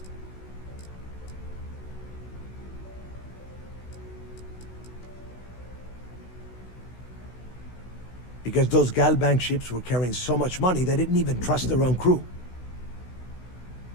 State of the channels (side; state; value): right; late; 16 ms